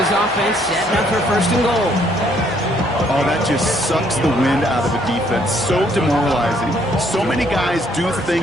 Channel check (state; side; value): noise; right; hum, 21 dB below the sound